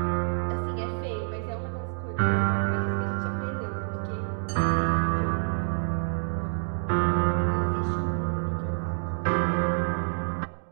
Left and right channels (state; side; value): silent; left; 58 dB below the other